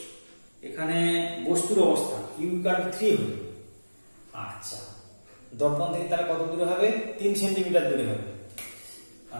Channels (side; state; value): both; inverted; correlation -1.00